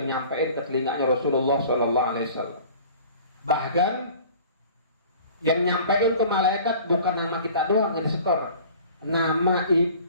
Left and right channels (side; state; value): both; inverted; correlation -0.46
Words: nyampein ke telinganya Rasulullah Sallallahu Alaihi Wasallam. Bahkan yang nyampein ke malaikat bukan nama kita doang yang disetor,